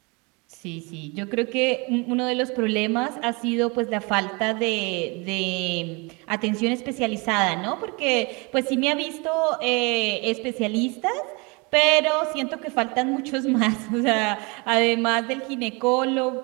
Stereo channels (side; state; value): left; quieter; 29.0 dB